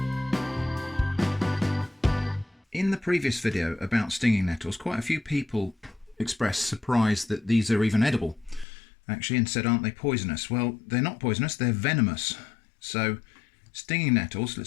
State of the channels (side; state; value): right; drops out; at 8.7 s